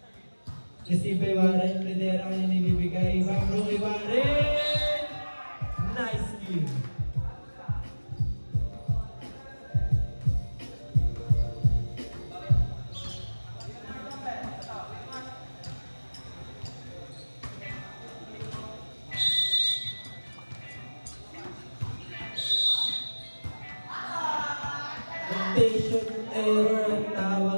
Receive by Warren. Pedera ang nilibigay. Bambro kay Warren. Nice kill. Rotation error ang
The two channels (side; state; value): both; inverted; correlation -1.00